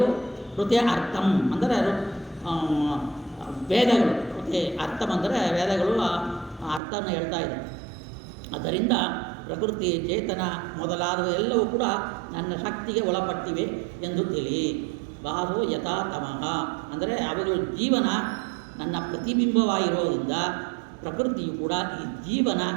ಹೃದಯ ಅರ್ಥಂ ಅಂದರೆ ವೇದಗಳು ಹೃದಯ ಅರ್ಥಂ ಅಂದರೆ ವೇದಗಳು ಅರ್ಥವನ್ನು ಹೇಳ್ತಾ ಇದೆ. ಅದರಿಂದ ಪ್ರಕೃತಿ, ಚೇತನ ಮೊದಲಾದ ಎಲ್ಲವೂ ಕೂಡ ನನ್ನ ಶಕ್ತಿಗೆ ಒಳಪಟ್ಟಿವೆ ಎಂದು ತಿಳಿ. ಭಾಸೋ ಯಥಾ ತಮಃ ಅಂದರೆ ಅವುಗಳ ಜೀವನ ನನ್ನ ಪ್ರತಿಬಿಂಬವಾಗಿರೋದ್ರಿಂದ ಪ್ರಕೃತಿಯು ಕೂಡ ಈ ಜೀವನ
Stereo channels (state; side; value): drops out; left; at 6.8 s